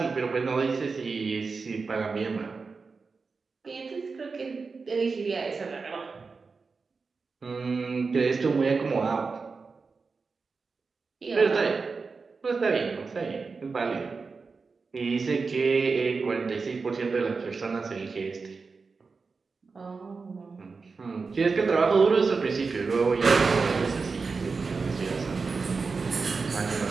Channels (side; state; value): left; quieter; 4.6 dB